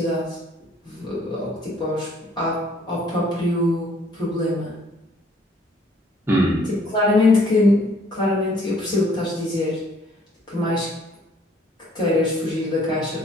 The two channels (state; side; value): normal; both; correlation 0.61